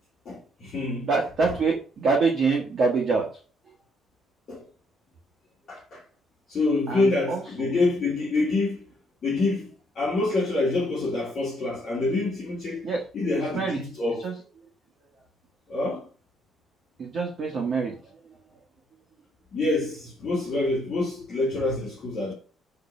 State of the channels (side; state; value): both; normal; correlation 0.70